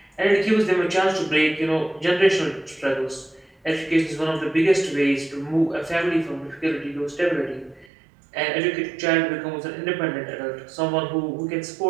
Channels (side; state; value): left; drops out; at 7.9 s